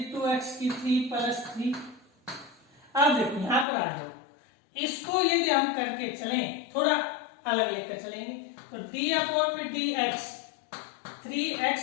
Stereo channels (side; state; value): right; drops out; at 3.7 s